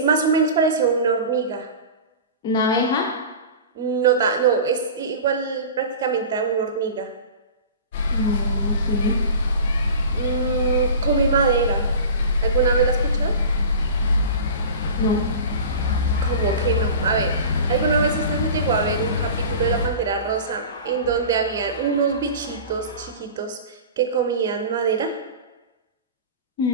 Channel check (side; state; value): both; inverted; correlation -0.36